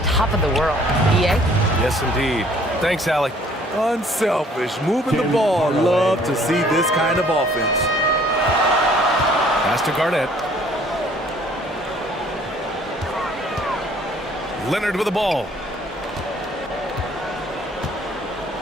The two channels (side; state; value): both; normal; correlation 0.58